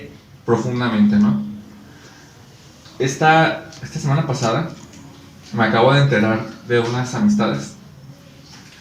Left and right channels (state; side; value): identical; both; correlation 1.00